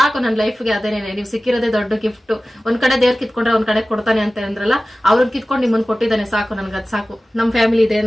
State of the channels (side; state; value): both; normal; correlation 0.96